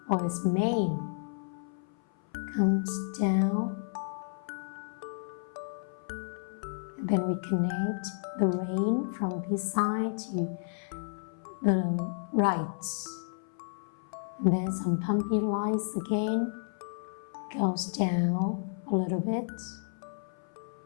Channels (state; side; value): silent; right; 57 dB below the other